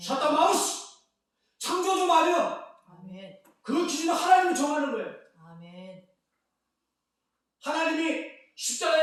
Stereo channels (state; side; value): identical; both; correlation 1.00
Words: 샤타 마우스 창조주 마음이야. 아멘. 그 기준은 하나님이 정하는 거예요. 아멘. 하나님이